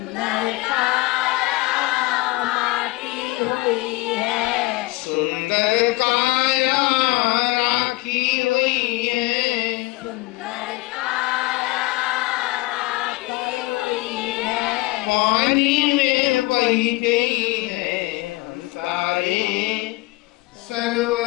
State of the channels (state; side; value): quieter; right; 21.8 dB